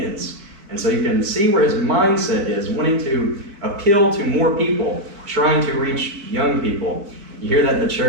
And so you can see where his mindset is, wanting to appeal to more people, trying to reach young people. You hear that in the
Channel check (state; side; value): late; left; 4.6 ms